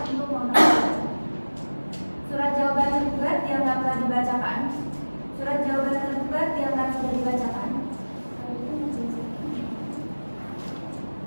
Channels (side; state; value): both; inverted; correlation -1.00